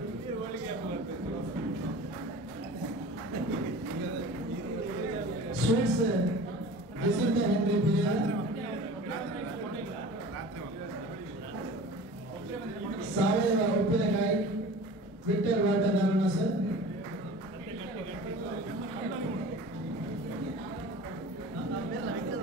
sweets Jacinta Henry Pereira, ಸಾವಯವ ಉಪ್ಪಿನಕಾಯಿ ವಿಕ್ಟರ್ ವಾಟರ್ ನಾರಾಯಣ ಸರ್,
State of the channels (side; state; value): both; normal; correlation 0.39